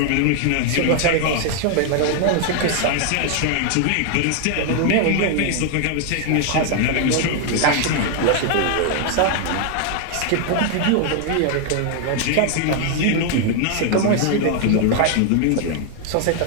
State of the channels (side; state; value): both; different; correlation 0.00